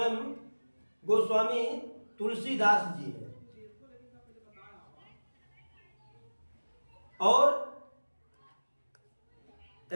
गोस्वामी तुलसीदास जी हैं। और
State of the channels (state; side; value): inverted; both; correlation -1.00